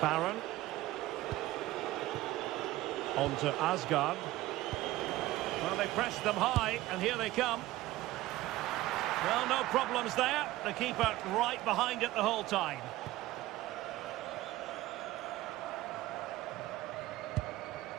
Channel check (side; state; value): left; quieter; 16.8 dB